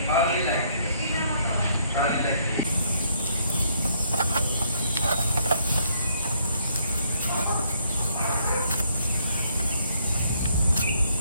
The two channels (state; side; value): inverted; both; correlation -0.68